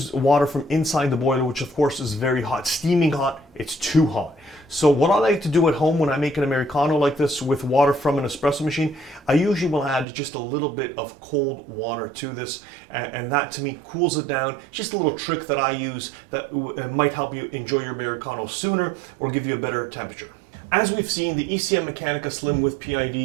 water from inside the boiler, which of course is very hot, steaming hot. It's too hot. So what I like to do at home when I make an Americano like this with water from an espresso machine, I usually will add just a little bit of cold water to this, and that to me cools it down. Just a little trick that I use that might help you enjoy your Americano sooner or give you a better temperature. As we've seen, the ECM Mechanica Slim with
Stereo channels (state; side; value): drops out; left; at 10.1 s